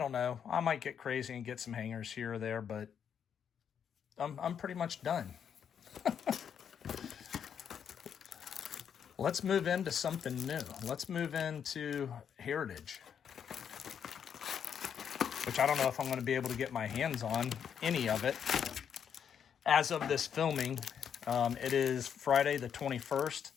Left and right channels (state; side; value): quieter; right; 8.0 dB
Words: know, I might get crazy and get some hangers here or there, but I'm pretty much done. Let's move into something new. Let's move into Heritage, which I don't know if I'm going to be able to get my hands on any of it. As of this filming, it is Friday the 21st,